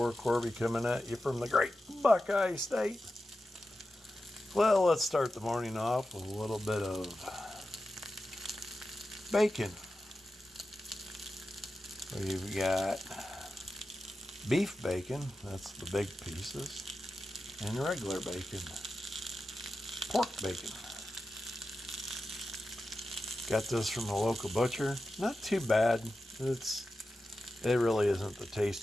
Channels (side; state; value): both; normal; correlation 0.92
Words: Corby coming at you from the great Buckeye State. Well, let's start the morning off with a little bit of bacon. We've got beef bacon, that's the big pieces, and regular bacon, pork bacon. Got this from a local butcher. Not too bad. It really isn't the